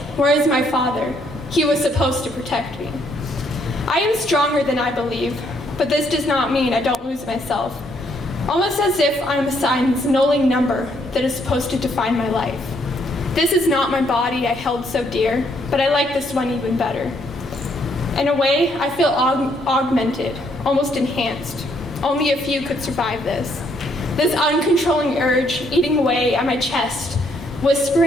Where is my father? He was supposed to protect me. I am stronger than I believe, but this does not mean I don't lose myself. Almost as if I'm assigned this knolling number that is supposed to define my life. This is not my body I held so dear, but I like this one even better. In a way, I feel augmented, almost enhanced. Only a few could survive this. This uncontrolling urge eating away at my chest,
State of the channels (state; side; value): normal; both; correlation 0.70